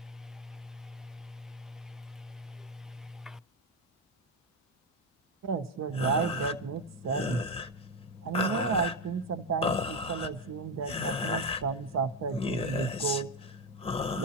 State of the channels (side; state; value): both; normal; correlation 0.10